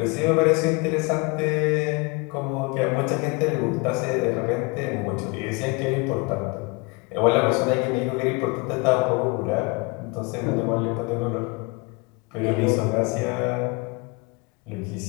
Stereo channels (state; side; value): quieter; right; 28.2 dB